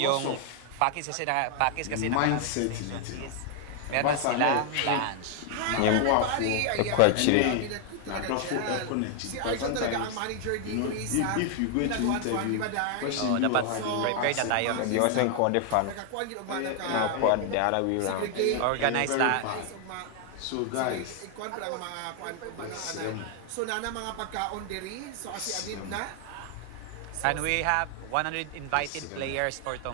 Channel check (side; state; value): both; different; correlation 0.00